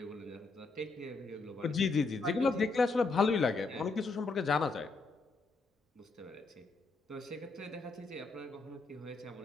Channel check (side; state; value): right; quieter; 3.8 dB